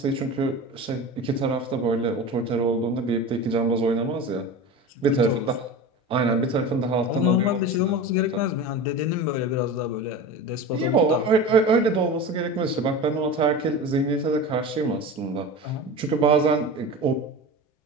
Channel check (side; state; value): both; normal; correlation 0.30